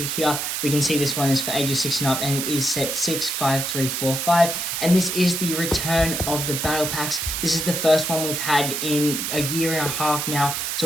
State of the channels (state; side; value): noise; right; hiss, 2 dB below the sound